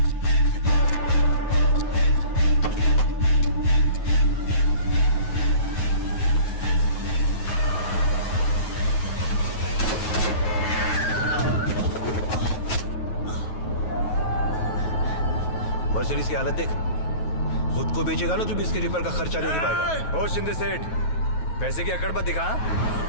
मर्सिडीज की हालत देख, खुद को बेचेगा ना तो भी इसके रिपेयर का खर्चा नहीं दे पाएगा। ओ शिंदे सेठ, पैसे की अकड़ मत दिखा।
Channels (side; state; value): right; late; 9.3 ms